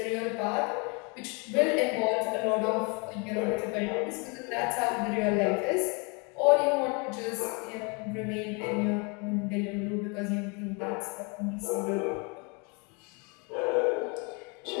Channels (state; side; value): quieter; right; 32.3 dB